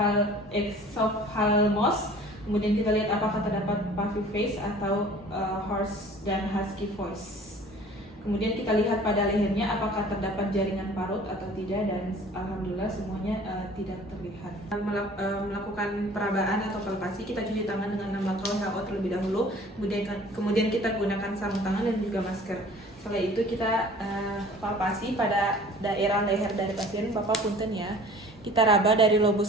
Kemudian kita lihat apakah terdapat puffy face atau hoarse dan husky voice. Kemudian kita lihat pada lehernya apakah terdapat jaringan parut atau tidak, dan alhamdulillah semuanya tidak terlihat. Melakukan perabaan atau palpasi, kita cuci tangan dengan 6 langkah WHO terlebih dahulu. Kemudian kita gunakan sarung tangan dan juga masker. Setelah itu kita palpasi pada daerah leher dari pasien. Bapak punten ya. Kita raba dari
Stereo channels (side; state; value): both; normal; correlation 0.48